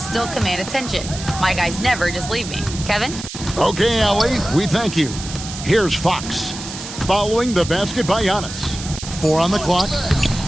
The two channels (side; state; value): right; noise; hiss, 10 dB below the sound